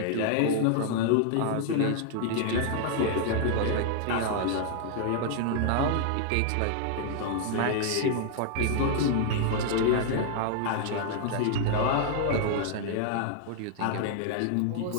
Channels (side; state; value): both; different; correlation 0.00